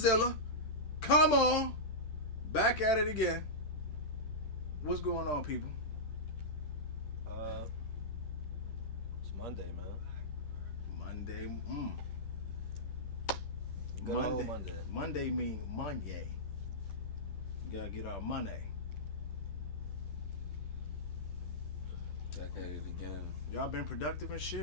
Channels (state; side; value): late; right; 10 ms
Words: Come on. Back at it again. What's going on, people? It's Monday, man. Monday. Good old Monday. Monday mean Monday. We gotta get our money. Back at it again. Y'all been productive and